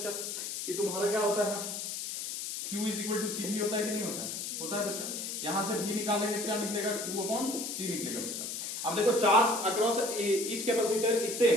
कि तुम्हारा क्या होता है, Q is equal to CV होता है कि नहीं होता है? होता है बच्चा। यहां से V निकालेंगे क्या निकलेगा, Q अपॉन C निकलेगा बच्चा। अब देखो charge across each capacitor is same,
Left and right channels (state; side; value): noise; left; hiss, 5 dB below the sound